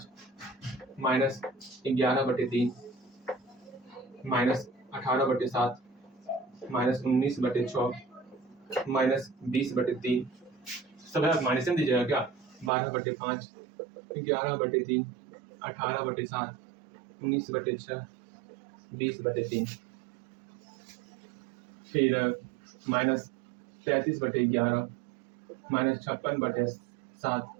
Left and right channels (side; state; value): left; drops out; at 12.7 s